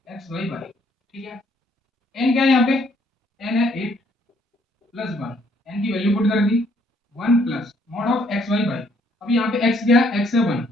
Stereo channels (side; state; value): both; normal; correlation 0.67